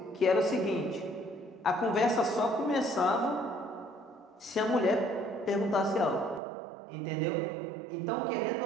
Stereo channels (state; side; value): drops out; left; at 6.4 s